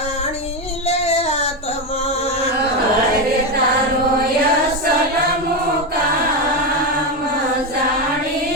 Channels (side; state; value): both; normal; correlation 0.12